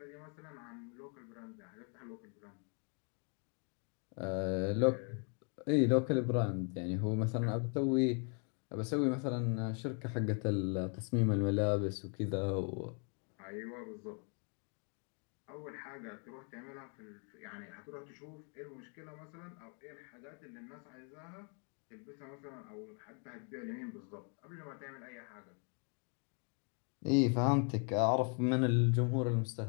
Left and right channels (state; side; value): quieter; right; 39.9 dB